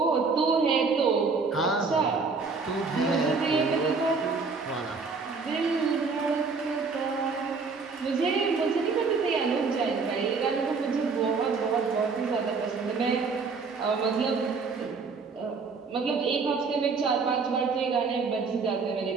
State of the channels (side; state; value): left; quieter; 4.7 dB